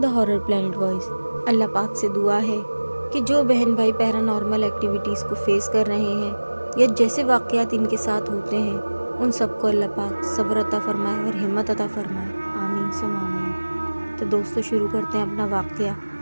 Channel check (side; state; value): both; inverted; correlation -1.00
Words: horror planet voice. अल्लाह पाक से दुआ है कि जो बहन भाई पैरानॉर्मल एक्टिविटीज़ को फेस कर रहे हैं या जैसे वाक़यात इनके साथ होते हैं, उन सबको अल्लाह पाक सब्र अता फरमाए और हिम्मत अता फरमाए। आमीन सुम आमीन। तो दोस्तों, शुरू करते हैं अपना वाक़या